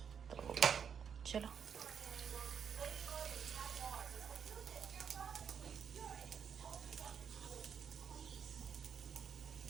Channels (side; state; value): left; quieter; 7.4 dB